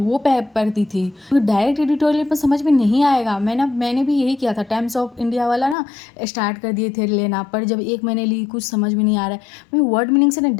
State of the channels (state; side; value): drops out; right; at 5.8 s